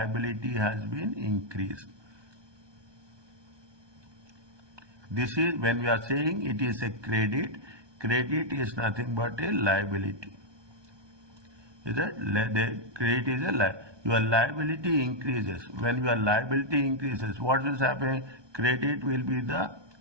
has been increased. This is when we are saying it is a credit. Credit is nothing but a liability. Is that the credit is a liability? Your liability increases. When your liability increases, what will happen? Credit will be the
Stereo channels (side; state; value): left; late; 1.2 ms